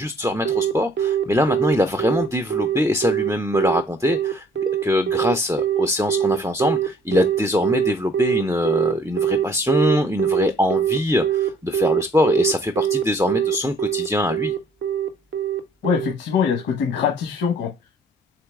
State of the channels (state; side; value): normal; both; correlation 0.58